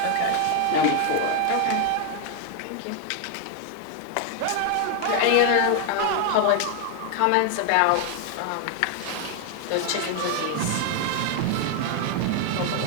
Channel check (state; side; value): different; both; correlation 0.01